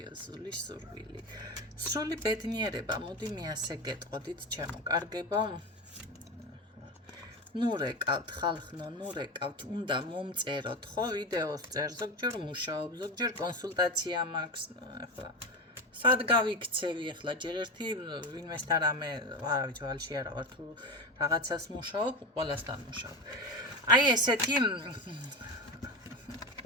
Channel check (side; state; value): both; normal; correlation 0.20